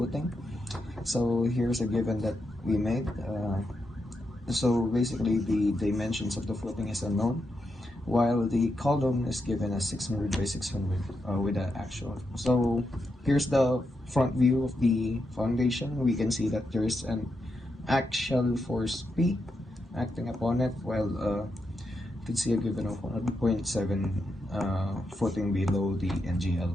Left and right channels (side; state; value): both; normal; correlation 0.84